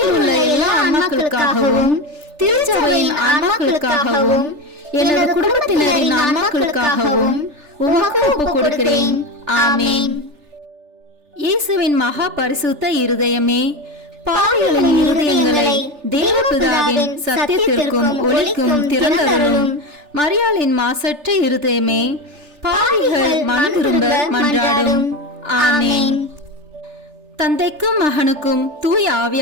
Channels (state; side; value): late; left; 3.4 ms